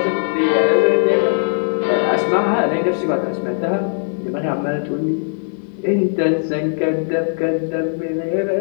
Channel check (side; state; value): right; silent; digital silence